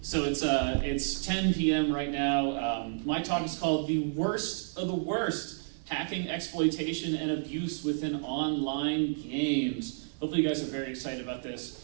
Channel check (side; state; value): left; silent; 57 dB below the other